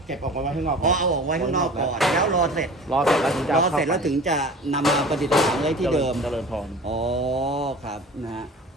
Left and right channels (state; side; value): normal; both; correlation 0.40